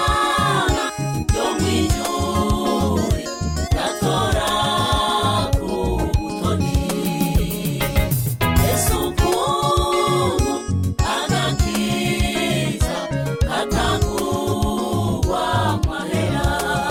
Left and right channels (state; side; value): identical; both; correlation 1.00